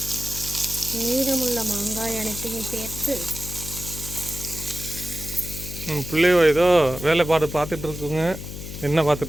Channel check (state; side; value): noise; left; hum, 9 dB below the sound